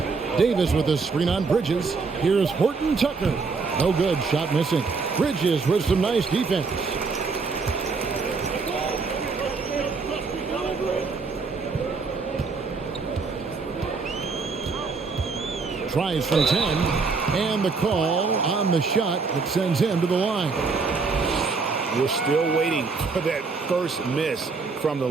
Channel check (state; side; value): quieter; left; 4.6 dB